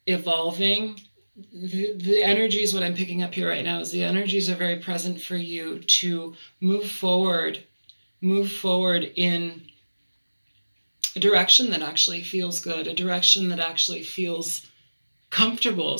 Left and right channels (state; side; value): inverted; both; correlation -1.00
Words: evolving. The energies, what I'm picking up here right now is the energies are very present for you to move forward in a direction that actually feels good, a direction that actually feels comfortable,